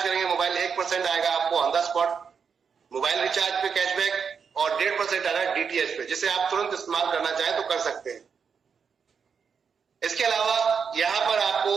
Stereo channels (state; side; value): quieter; left; 6.3 dB